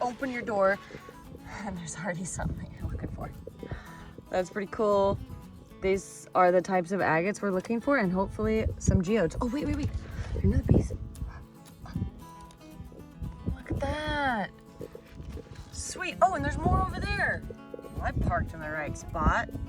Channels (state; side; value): identical; both; correlation 1.00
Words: open your door and there's already something you're looking for. That's pretty cool. These are the types of agates we're looking for, and hopefully some geodes. Oh, wait. Another piece. Look at that. Sweet. Oh, and there's more over there. Well, I parked in the right spot.